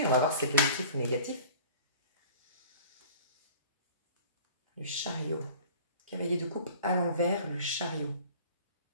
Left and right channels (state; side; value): inverted; both; correlation -0.44